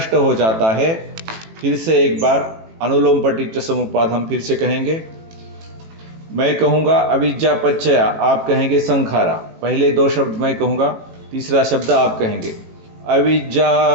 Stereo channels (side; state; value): left; late; 18 ms